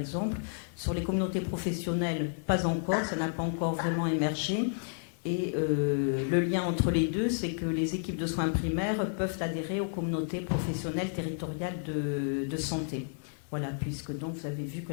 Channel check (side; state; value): right; silent; 57 dB below the other